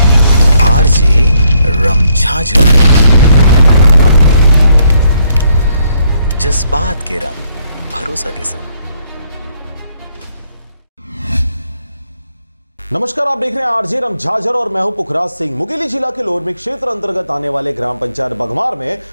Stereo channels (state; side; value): inverted; both; correlation -0.71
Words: आरजे रमझाझर। जज्बात के रंग भरोसा के संग। नमस्कार, आप देख रहे हैं आरजे रमझाझर और मैं हूं पुखराज सिंह। मुंगेली जिला के लोरमी क्षेत्र अंतर्गत आने वाले ग्राम पंचायत बघमार में